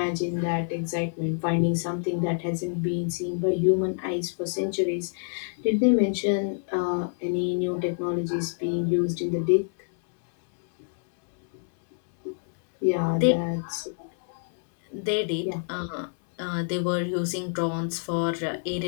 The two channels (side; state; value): right; silent; 60 dB below the other